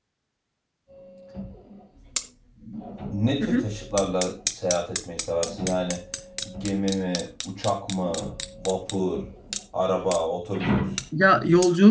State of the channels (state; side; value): identical; both; correlation 1.00